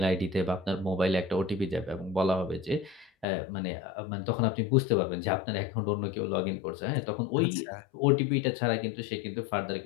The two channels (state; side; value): drops out; right; at 3.2 s